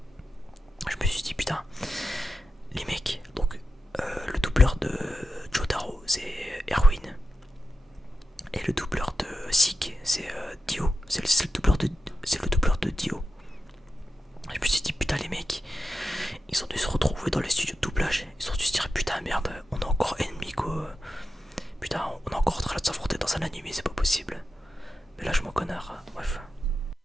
je me suis dit putain, les mecs, donc le doubleur de Jotaro c'est Erwin. Et le doubleur de Zeke c'est Dio. C'est le doubleur de Dio. Je me suis dit putain les mecs, ils ont dû se retrouver dans les studios de doublage. Ils ont dû se dire putain merde, on est encore ennemis quoi. Putain on est encore en train de s'affronter dans un anime, c'est pas possible. Mais là je m'en connard, bref.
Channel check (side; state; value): both; normal; correlation 0.90